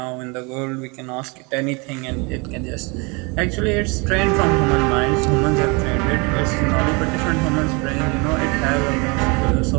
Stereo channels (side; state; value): left; quieter; 29.4 dB